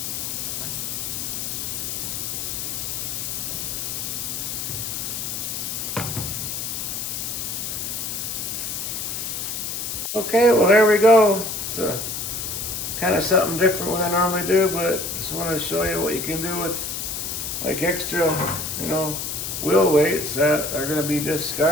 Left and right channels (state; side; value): noise; left; hiss, 4 dB below the sound